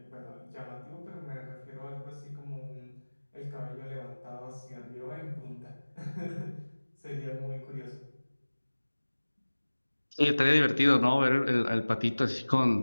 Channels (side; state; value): both; inverted; correlation -1.00